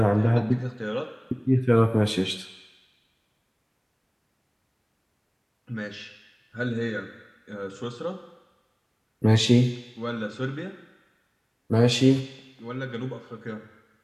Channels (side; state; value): both; identical; correlation 1.00